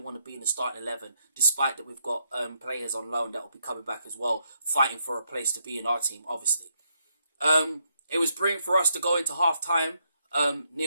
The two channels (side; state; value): both; inverted; correlation -0.78